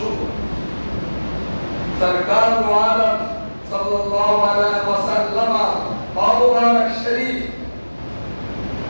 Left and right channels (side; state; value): both; inverted; correlation -1.00